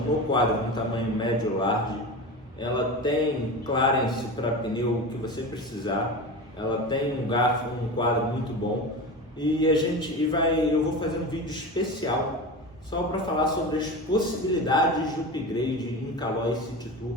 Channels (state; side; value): normal; both; correlation 0.27